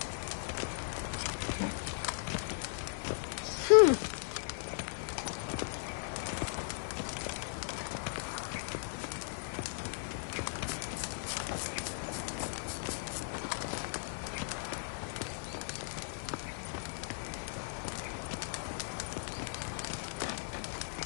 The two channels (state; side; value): silent; right; digital silence